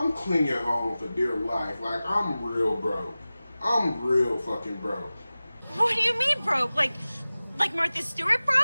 clinging on for dear life. Like, I'm real broke. I'm real fucking broke. What do you mean broke? Like Martha Stewart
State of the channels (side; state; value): both; inverted; correlation -0.97